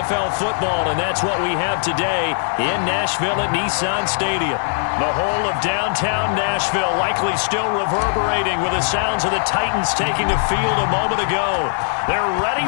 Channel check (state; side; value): silent; right; digital silence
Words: football, and that's what we have today in Nashville at Nissan Stadium. The whole of downtown Nashville likely still reverberating with the sounds of the Titans taking the field a moment ago. They're ready